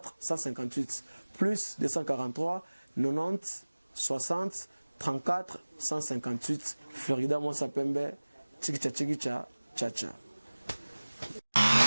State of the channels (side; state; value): both; inverted; correlation -1.00